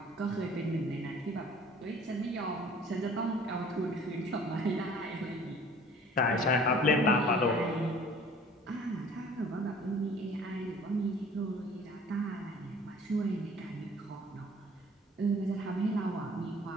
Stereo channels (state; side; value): normal; both; correlation 0.50